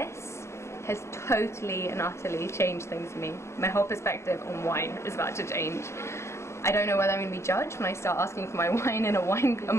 has totally and utterly changed things for me. My whole perspective on wine is about to change. I don't know whether I'm going to be judged when I start asking for my wine in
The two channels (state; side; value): late; right; 0.13 ms